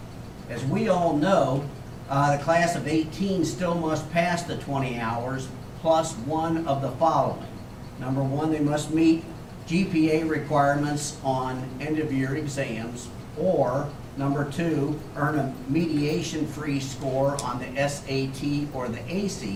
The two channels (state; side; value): identical; both; correlation 1.00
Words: As we all know, the class of 18 still must pass the 20 hours plus one of the following. Number one, they must meet GPA requirements on end-of-year exams, or Number 2, earn a mediation-free score on the SAT or the